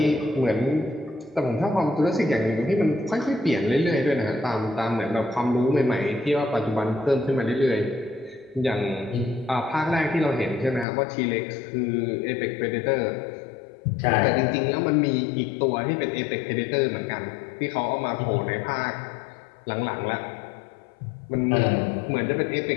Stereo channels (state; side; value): drops out; right; at 10.9 s